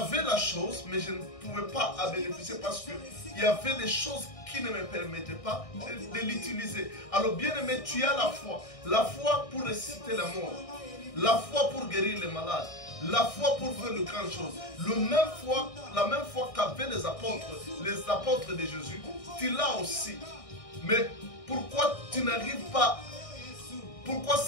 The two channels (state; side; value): late; right; 1.6 ms